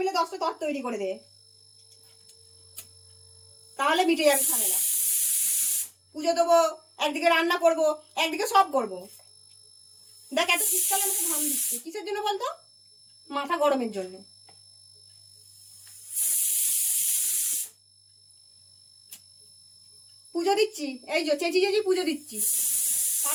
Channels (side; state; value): both; identical; correlation 1.00